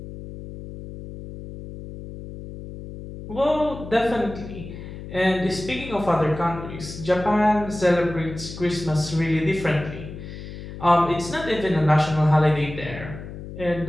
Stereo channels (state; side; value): noise; left; hum, 11 dB below the sound